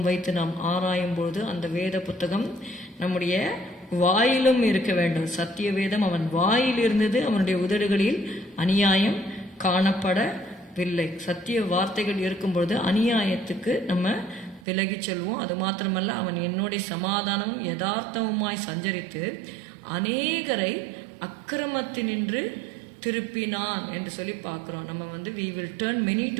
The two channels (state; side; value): drops out; left; at 14.6 s